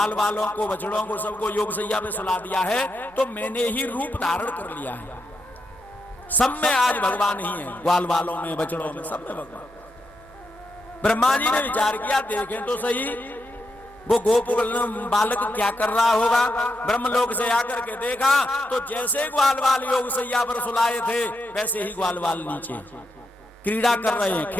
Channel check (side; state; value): both; normal; correlation 0.83